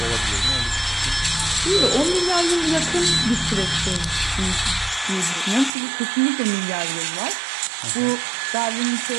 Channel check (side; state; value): left; drops out; at 5.7 s